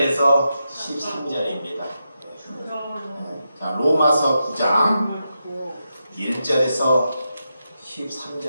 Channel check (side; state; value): both; inverted; correlation -0.86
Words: 13절입니다. 자, 로마서 9장 1절에서